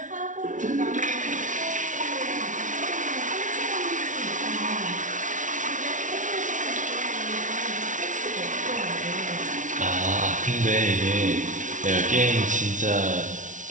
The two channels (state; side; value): late; left; 0.37 ms